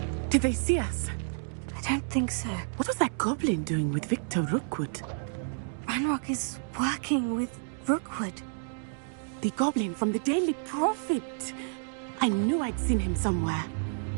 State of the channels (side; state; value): left; silent; digital silence